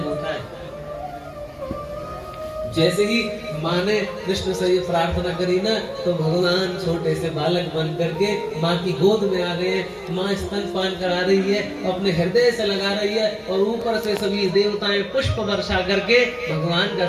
होता है। जैसे ही माँ ने कृष्ण से ये प्रार्थना करी ना, तो भगवान छोटे से बालक बन करके माँ की गोद में आ गए। माँ स्तनपान करा रही है, अपने हृदय से लगा रही है, और ऊपर से सभी देवताएं पुष्प वर्षा करके भगवान का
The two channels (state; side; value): identical; both; correlation 1.00